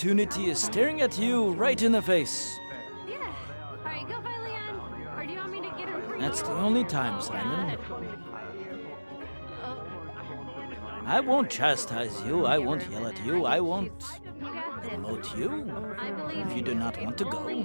is staring at you right in the face. Alright, go find Leon. Or do you want me to get him for you? That's the only time, Simon. I won't chastise you, I won't yell at you, I won't promote you if you do not want to go.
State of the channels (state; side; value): inverted; both; correlation -1.00